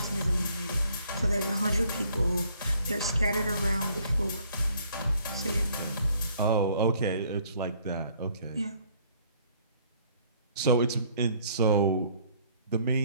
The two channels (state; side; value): inverted; both; correlation -0.62